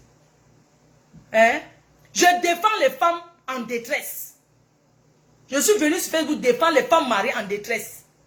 Hein? Je défends les femmes en détresse. Je suis venu sur Facebook défendre les femmes mariées en détresse.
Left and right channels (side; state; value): both; identical; correlation 1.00